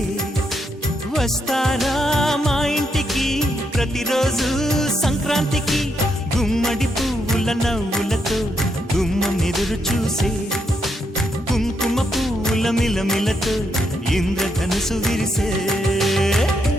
వస్తారా మా ఇంటికి ప్రతిరోజు సంక్రాంతికి గుమ్మడి పువ్వుల నవ్వులతో గుమ్మం ఎదురు చూసే కుంకుమ పువ్వుల మిలమిలతో ఇంద్రధనుసు విరిసే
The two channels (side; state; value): both; normal; correlation 0.79